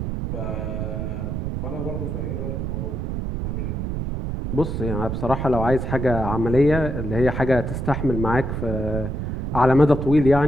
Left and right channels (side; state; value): right; noise; rumble, 3 dB below the sound